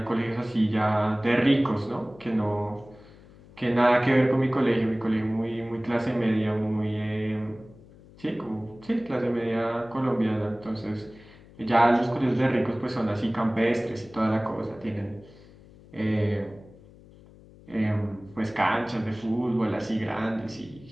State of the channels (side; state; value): left; noise; hum, 23 dB below the sound